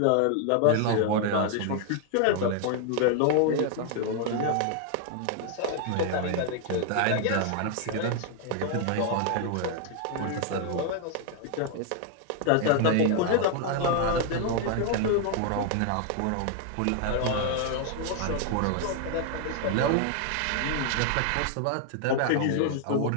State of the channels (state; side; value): different; both; correlation 0.00